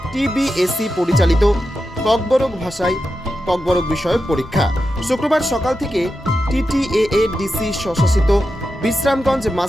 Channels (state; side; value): normal; both; correlation 0.89